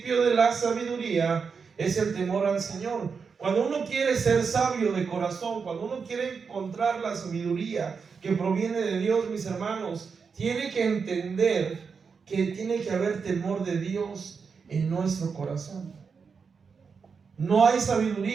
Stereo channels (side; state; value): left; quieter; 5.6 dB